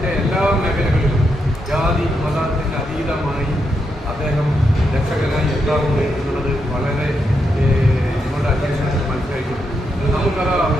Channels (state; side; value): normal; both; correlation 0.82